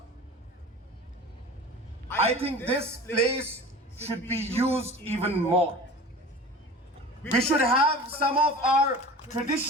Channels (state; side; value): normal; both; correlation 0.38